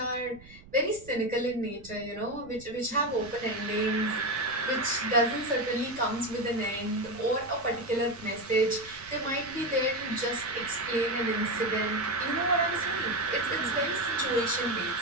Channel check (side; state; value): right; noise; rumble, 21 dB below the sound